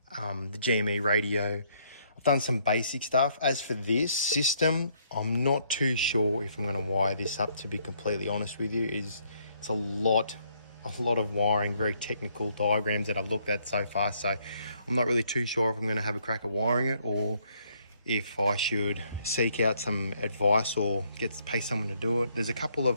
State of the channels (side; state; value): both; inverted; correlation -0.69